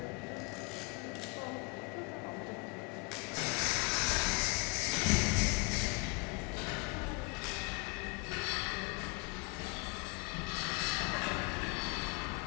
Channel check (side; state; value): right; quieter; 29.4 dB